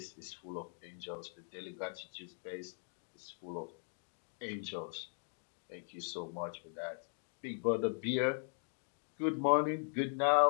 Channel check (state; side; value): silent; right; 51 dB below the other